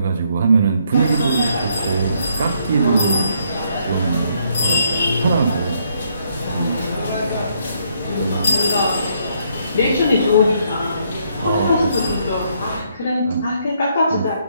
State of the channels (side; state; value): both; inverted; correlation -0.72